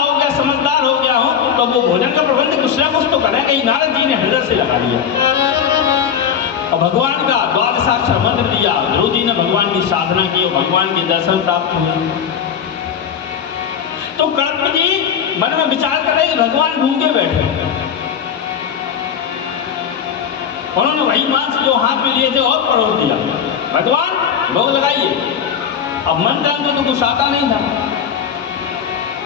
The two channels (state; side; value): quieter; right; 7.9 dB